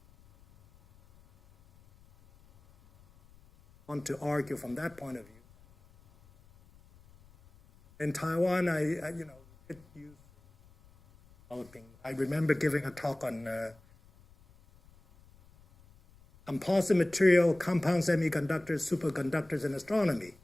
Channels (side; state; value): left; noise; rumble, 27 dB below the sound